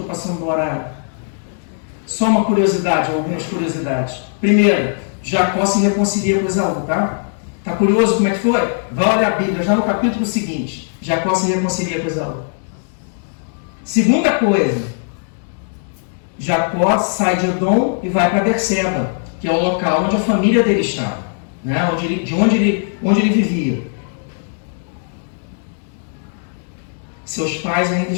passando no horário. Só uma curiosidade, algumas curiosidades. Primeiro, Jacó se reconcilia com Esaú, tá? Tá curioso como é que foi? Vai olhar a Bíblia, já no capítulo seguinte. Jacó se reconcilia com Esaú. Segunda coisa, Jacó sai de Edom e vai para Berseba, que é o local onde a família dele estava, né? onde ele vivia. Seus pais ainda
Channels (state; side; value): silent; right; digital silence